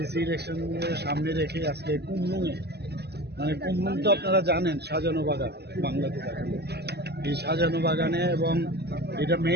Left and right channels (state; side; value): late; left; 0.48 ms